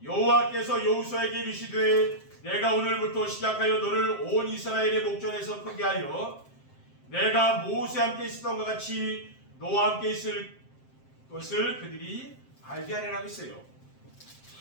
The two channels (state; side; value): late; right; 7.6 ms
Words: 여호와께서 여호수아에게 이르시되 내가 오늘부터 시작하여 너를 온 이스라엘의 목전에서 크게 하여 내가 모세와 함께 있었던 것 같이 너와 함께 있을 것을 그들이 알게 하리라고 했어요.